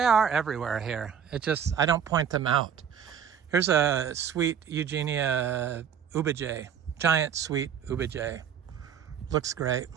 are everywhere here. I don't point them out. Here's a sweet Eugenia ubijay, giant sweet ubijay. Looks great.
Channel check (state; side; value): quieter; left; 8.1 dB